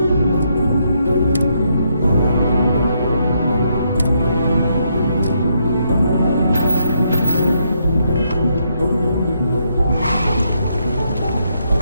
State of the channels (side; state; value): both; inverted; correlation -0.76